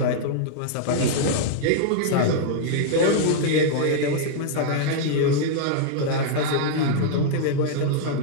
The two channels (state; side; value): different; both; correlation -0.01